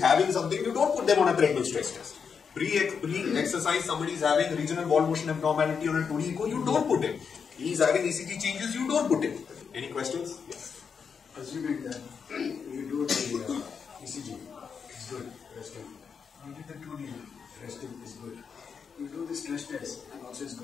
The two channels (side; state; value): right; quieter; 6.3 dB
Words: something, you don't put them on a treadmill stress test. Pre-exercise, somebody is having regional wall motion abnormality on a 2D echo, you don't put him. He is having ECG changes, you don't put him. Any questions? Yes. Assuming that you do the ECG, it's good, resting. You did the 2D, resting is good. You do the stress test, and also is